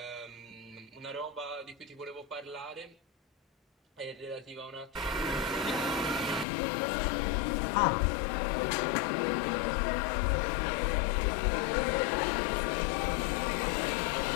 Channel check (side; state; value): right; drops out; at 6.5 s